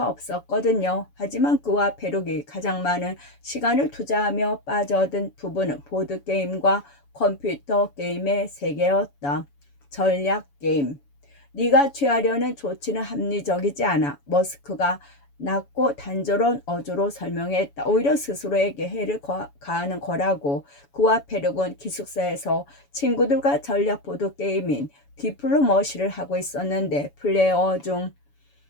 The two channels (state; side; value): late; right; 7.1 ms